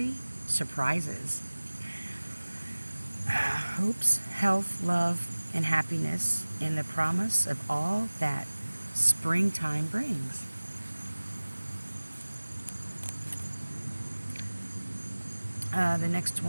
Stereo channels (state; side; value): inverted; both; correlation -1.00